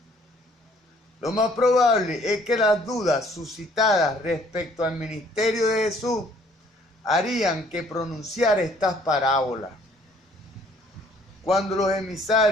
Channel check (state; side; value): normal; both; correlation 0.60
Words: Lo más probable es que las dudas suscitadas respecto al ministerio de Jesús harían que pronunciara estas parábolas. Cuando los